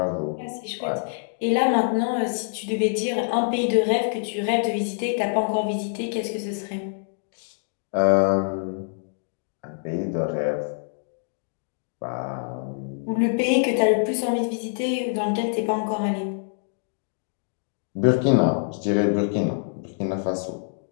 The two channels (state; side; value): silent; right; digital silence